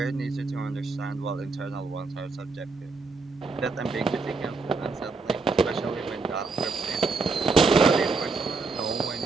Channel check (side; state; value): left; quieter; 4.1 dB